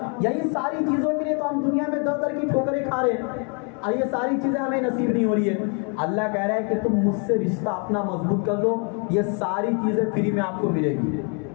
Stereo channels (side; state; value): right; quieter; 37.0 dB